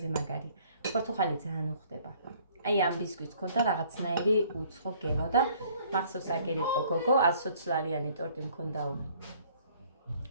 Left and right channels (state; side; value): inverted; both; correlation -0.58